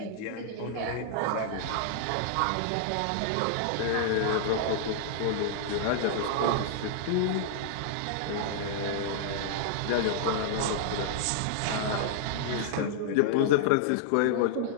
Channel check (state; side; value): different; both; correlation -0.01